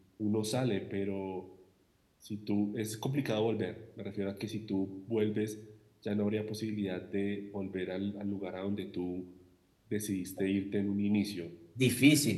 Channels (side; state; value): both; identical; correlation 1.00